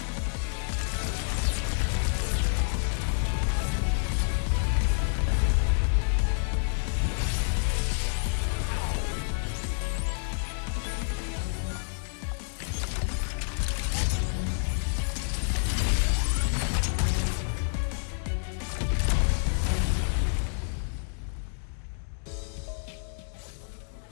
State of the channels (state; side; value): silent; right; digital silence